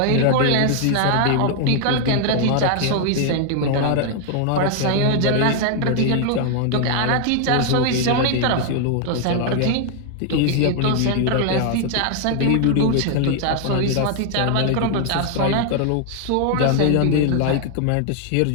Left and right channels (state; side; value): different; both; correlation 0.00